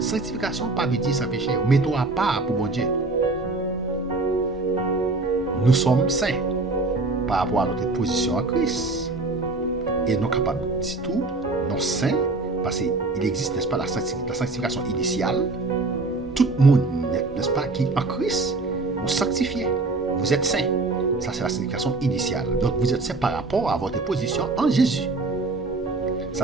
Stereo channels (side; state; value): left; quieter; 3.4 dB